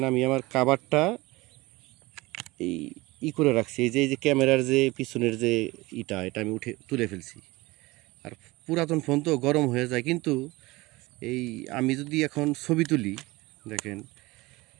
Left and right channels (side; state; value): left; quieter; 21.4 dB